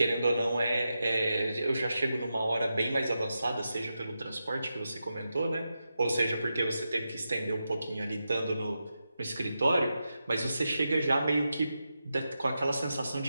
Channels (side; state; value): both; inverted; correlation -0.89